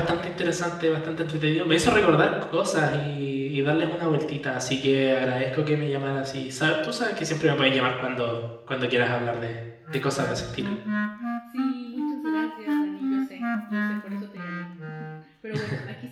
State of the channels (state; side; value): identical; both; correlation 1.00